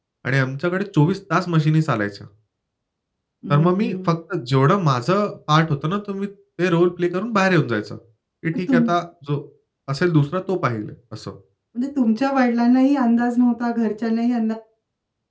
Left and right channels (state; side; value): identical; both; correlation 1.00